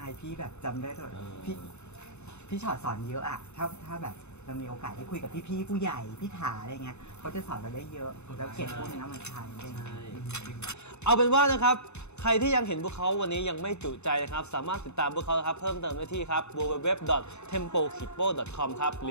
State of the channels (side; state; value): right; late; 0.82 ms